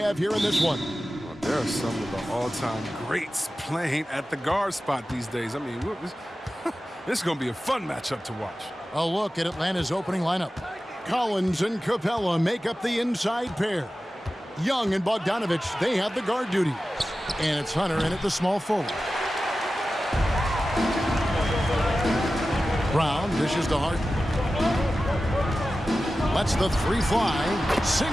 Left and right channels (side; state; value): both; normal; correlation 0.94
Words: here in this one. Well, there are some of the all-time greats playing at the guard spot these days. I mean, this is going to be a fun matchup to watch. A look at Atlanta's opening lineup. Collins and Capella make up the inside pair. Young and Bogdanovich, they have the guard duty. And it's Hunter in at the small forward. Brown dishes to Harden. Lets the three fly.